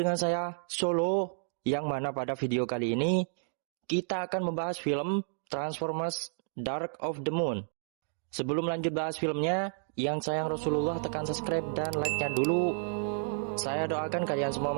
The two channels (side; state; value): left; silent; digital silence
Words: dengan saya Solo, yang mana pada video kali ini kita akan membahas film Transformers Dark of the Moon. Sebelum lanjut bahas filmnya, yang sayang Rasulullah tekan subscribe dan like-nya dulu. Saya doakan kalian semua